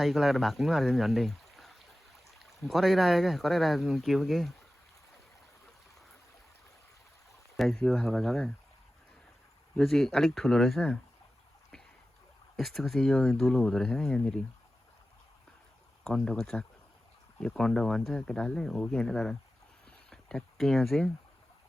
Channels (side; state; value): both; normal; correlation 0.94